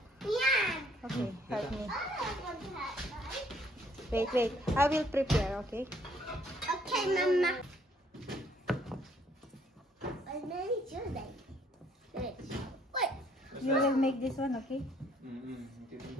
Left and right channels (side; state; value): both; normal; correlation 0.64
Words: Yeah. Okay, help me. I don't want to have, right? Wait. I will prepare, okay? Okay, Mama. I made sure that. Wait. You will make this one, okay? Okay.